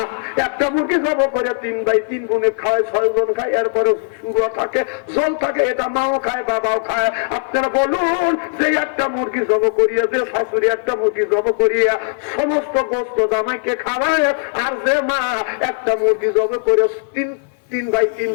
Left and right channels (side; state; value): right; silent; 57 dB below the other